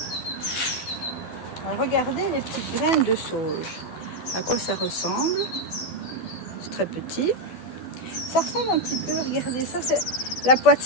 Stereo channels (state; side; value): late; right; 12 ms